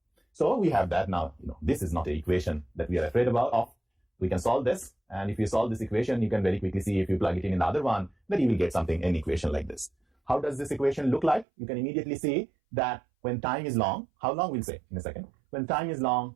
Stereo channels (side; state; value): left; drops out; at 11.5 s